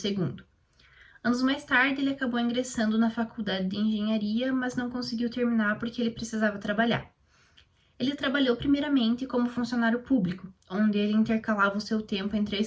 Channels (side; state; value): both; identical; correlation 1.00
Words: Anos mais tarde, ele acabou ingressando na faculdade de engenharia, mas não conseguiu terminar porque ele precisava trabalhar. Ele trabalhou primeiramente como funcionário público, onde ele intercalava o seu tempo entre a